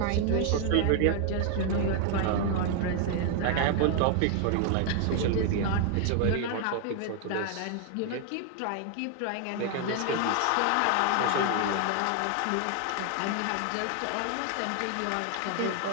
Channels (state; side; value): different; both; correlation 0.00